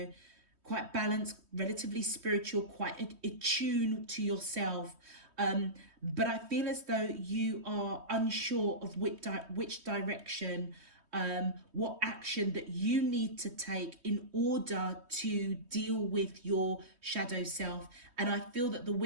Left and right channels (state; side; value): late; left; 3.2 ms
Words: quite balanced, relatively spiritual, quite attuned to yourself. But I feel as though you are unsure of which direction, what action that you need to take in order to deal with your shadow self. And I feel that the